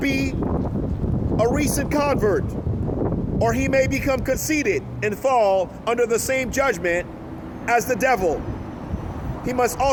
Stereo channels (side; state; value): both; identical; correlation 1.00